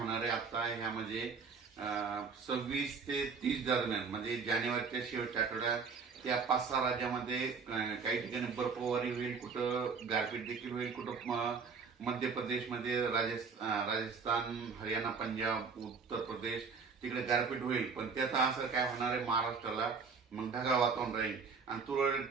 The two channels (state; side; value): quieter; left; 5.3 dB